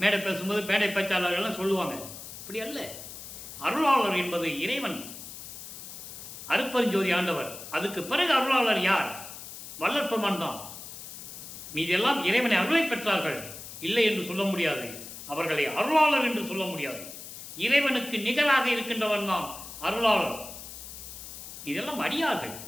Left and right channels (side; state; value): left; noise; hiss, 12 dB below the sound